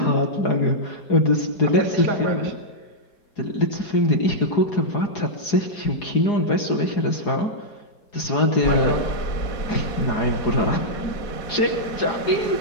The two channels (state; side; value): late; right; 4.8 ms